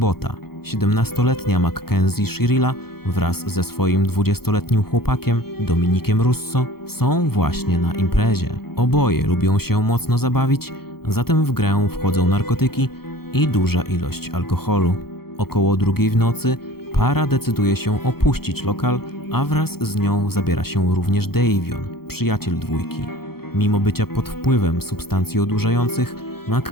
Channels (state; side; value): late; right; 0.95 ms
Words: 17-letnia Mackenzie Shirilla wraz ze swoim 20-letnim chłopakiem Dominikiem Russo są właśnie na imprezie. Oboje lubią się mocno zabawić, zatem w grę wchodzą narkotyki i duża ilość alkoholu. Około 2 w nocy para decyduje się opuścić lokal, a wraz z nią zabiera się również Davion, przyjaciel dwójki. Mimo bycia pod wpływem substancji odurzających,